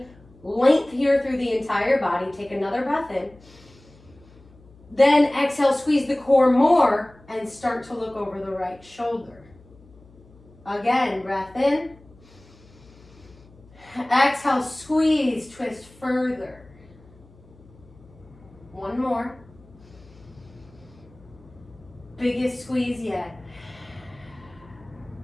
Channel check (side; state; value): left; noise; hum, 25 dB below the sound